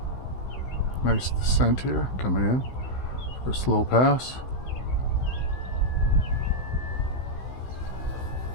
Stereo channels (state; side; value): late; right; 16 ms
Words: Nice descent here, coming in for a slow pass.